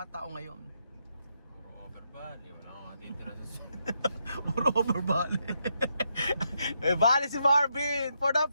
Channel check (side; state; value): both; inverted; correlation -0.79